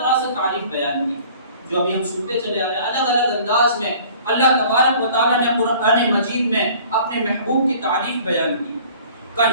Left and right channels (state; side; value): inverted; both; correlation -0.50